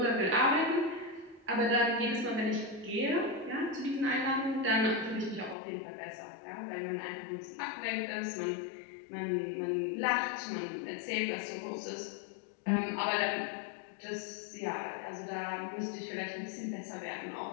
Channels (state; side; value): drops out; right; at 5.6 s